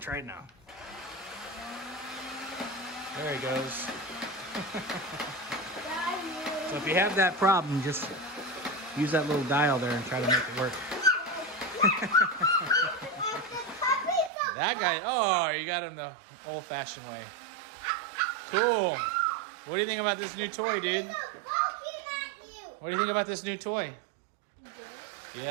it now. There he goes. So if you have that problem, just use that little dial there and try to make it work. That guy, oh, you got him the old-fashioned way. Cool. What do you think about this new toy, dude? What do you think about this new toy?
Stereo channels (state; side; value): drops out; left; at 14.3 s